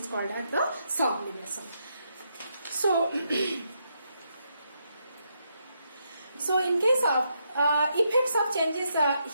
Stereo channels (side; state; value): both; inverted; correlation -0.79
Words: called as the sublimation. So so in case of effects of changes